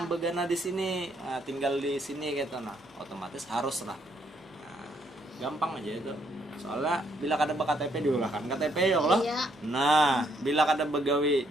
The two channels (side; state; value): both; normal; correlation 0.71